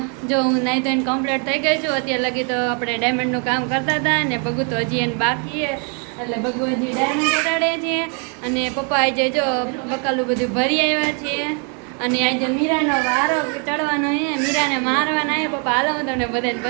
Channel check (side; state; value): left; quieter; 38.7 dB